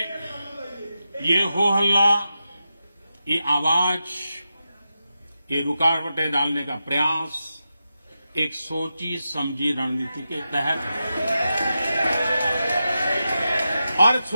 ये हो हल्ला, ये आवाज, ये रुकावटें डालने का प्रयास एक सोची समझी रणनीति के तहत है। और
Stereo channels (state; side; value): inverted; both; correlation -0.90